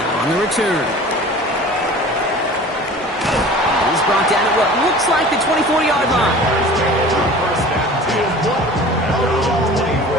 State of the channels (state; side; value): normal; both; correlation 0.42